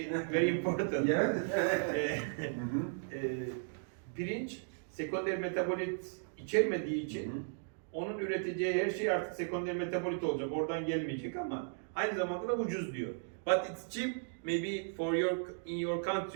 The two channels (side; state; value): left; silent; digital silence